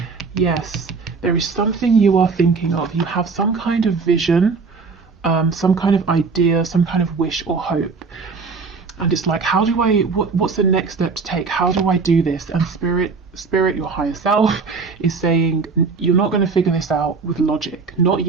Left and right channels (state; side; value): quieter; left; 4.8 dB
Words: Yes, there is something you are thinking of. You have some kind of vision, some kind of idea, some kind of wish or hope. And it's like, how do I, what's the next step to take? How do I do this? And spirit, your higher self, is saying, you're not going to figure this out with logic. Not